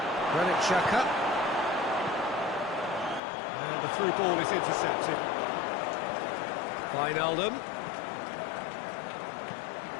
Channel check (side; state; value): right; drops out; at 3.2 s